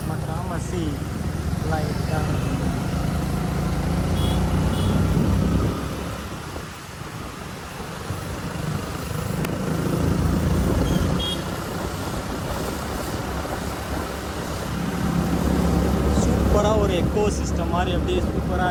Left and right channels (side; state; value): both; identical; correlation 1.00